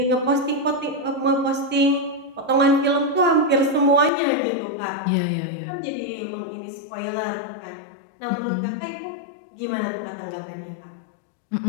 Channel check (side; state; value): right; drops out; at 4.1 s